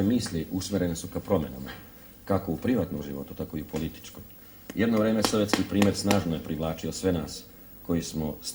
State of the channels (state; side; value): identical; both; correlation 1.00